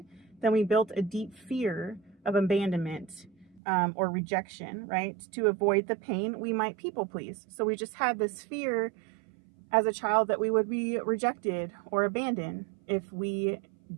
then we built a deep fear of abandonment or rejection, right? To avoid the pain, we might people please. So we just had this fear as a child that we would be rejected or abandoned if we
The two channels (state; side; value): drops out; left; at 3.6 s